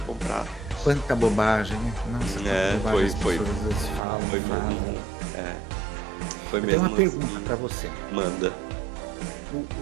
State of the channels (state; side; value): drops out; left; at 4.0 s